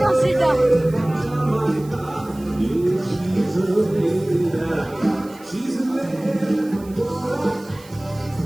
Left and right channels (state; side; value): noise; right; hiss, 24 dB below the sound